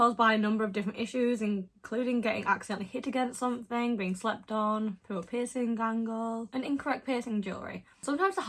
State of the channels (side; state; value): both; identical; correlation 1.00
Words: by a number of different issues, including getting accidentally hit against something, being slept on, poor piercing angle, and incorrect piercing jewellery. Sometimes the